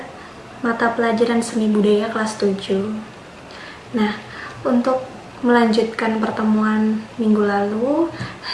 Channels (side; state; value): both; identical; correlation 1.00